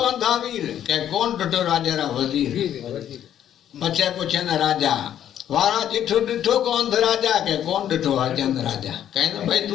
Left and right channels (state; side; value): quieter; right; 10.5 dB